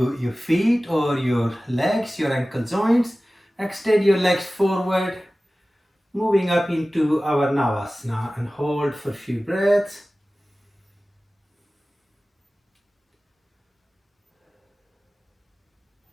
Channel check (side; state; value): both; normal; correlation 0.97